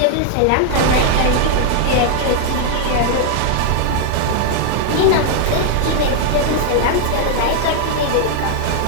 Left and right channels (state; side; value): different; both; correlation 0.00